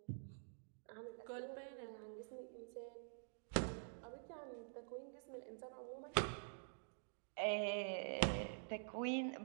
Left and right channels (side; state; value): left; silent; digital silence